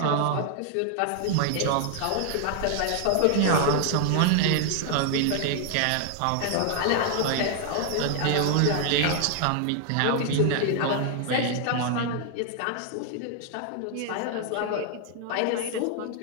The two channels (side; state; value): both; different; correlation 0.00